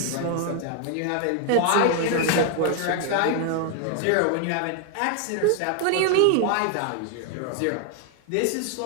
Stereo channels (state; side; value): different; both; correlation 0.00